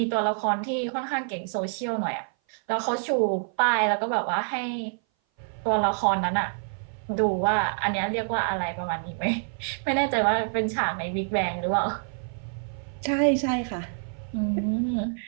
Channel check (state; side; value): silent; left; 58 dB below the other